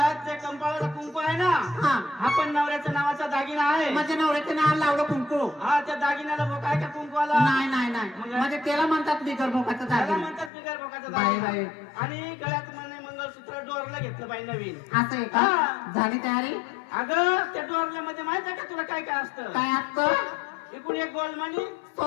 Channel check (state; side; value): drops out; right; at 10.5 s